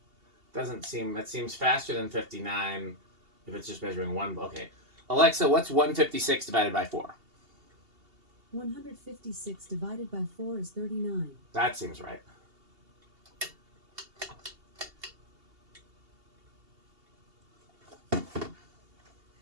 doesn't seem... that seems faster than 59 if it's just measuring one... Okay. Alexa, what's 156 divided by 4? 156 divided by 4 is 39. That seems right.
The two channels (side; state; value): left; late; 2.8 ms